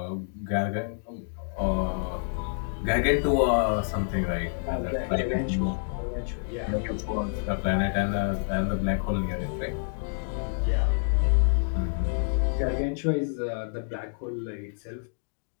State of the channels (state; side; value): silent; right; digital silence